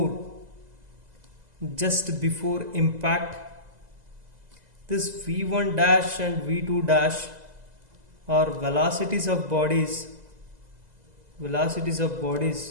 impact. This v1 dash and v2 dash are velocities of bodies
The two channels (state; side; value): late; left; 2.0 ms